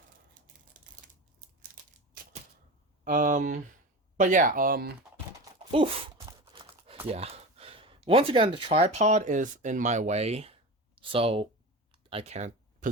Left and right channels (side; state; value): both; normal; correlation 0.28